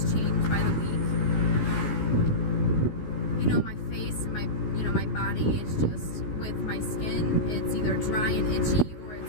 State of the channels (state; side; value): late; right; 14 ms